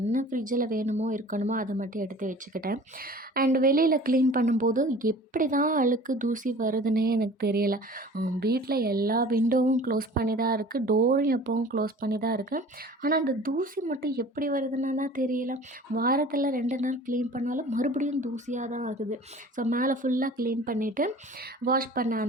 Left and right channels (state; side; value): normal; both; correlation 0.44